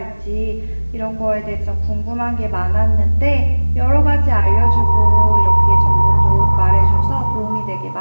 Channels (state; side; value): inverted; both; correlation -1.00